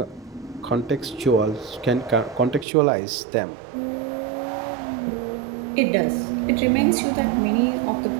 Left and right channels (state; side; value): drops out; left; at 2.7 s